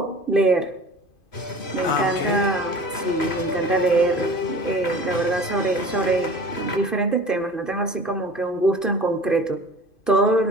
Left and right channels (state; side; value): late; right; 2.5 ms